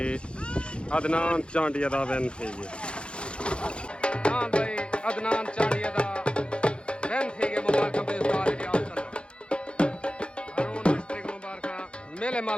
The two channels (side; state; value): right; late; 0.056 ms